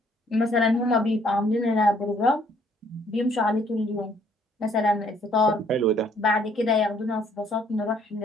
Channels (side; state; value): both; normal; correlation 0.64